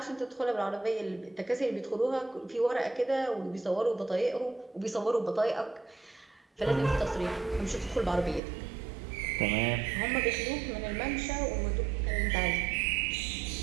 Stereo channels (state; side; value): drops out; left; at 8.4 s